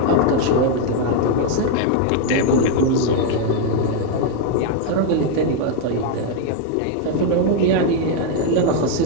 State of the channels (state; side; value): different; both; correlation 0.00